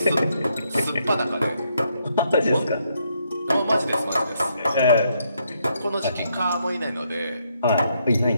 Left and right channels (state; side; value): inverted; both; correlation -0.75